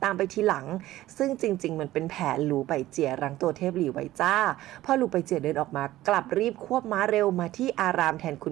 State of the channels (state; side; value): quieter; left; 15.4 dB